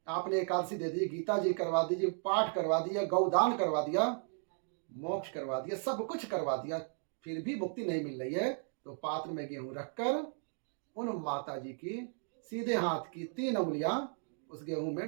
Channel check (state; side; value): silent; left; 54 dB below the other